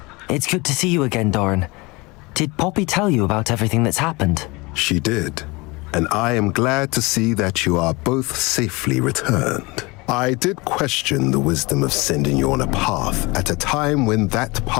It's good to see you again, Doran. Did Poppy tell you about everything that's happened? She did, and I am glad to see that you are both safely returned. I did question the wisdom of sending you on a path at a time when that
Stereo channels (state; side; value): quieter; right; 24.8 dB